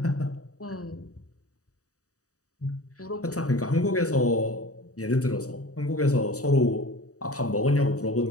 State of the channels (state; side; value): late; right; 0.66 ms